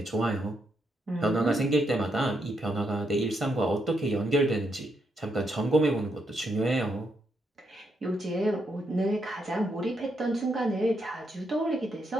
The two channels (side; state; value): both; normal; correlation 0.79